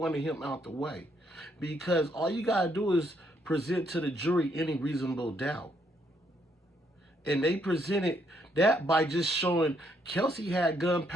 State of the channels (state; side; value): normal; both; correlation 0.73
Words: him out the way. Because all you got to do is present to the jury any reasonable doubt. And they presented that by just showing Kelsey had